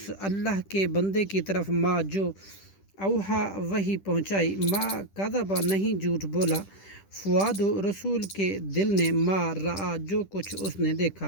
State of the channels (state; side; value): late; right; 10 ms